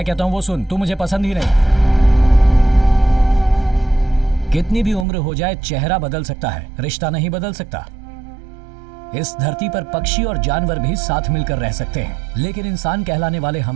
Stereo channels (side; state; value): left; drops out; at 5.1 s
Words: कहता हूँ वो सुन, तू मुझे पसंद ही नहीं। कितनी भी उम्र हो जाए, चेहरा बदल सकता है, रिश्ता नहीं बदल सकता। इस धरती पर पक्षी और जानवर भी साथ मिलकर रह सकते हैं, लेकिन इंसान कहलाने वाले